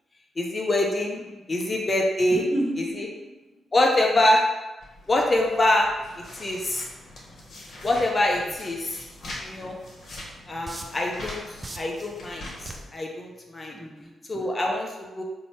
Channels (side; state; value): both; normal; correlation 0.86